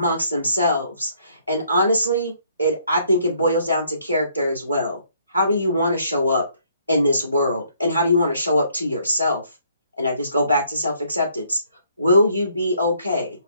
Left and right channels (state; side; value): inverted; both; correlation -0.66